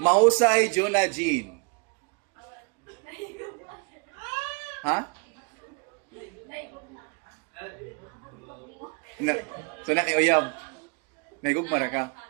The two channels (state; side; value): quieter; left; 35.4 dB